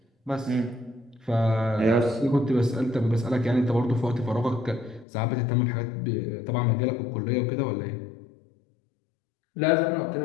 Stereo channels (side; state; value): right; drops out; at 5.1 s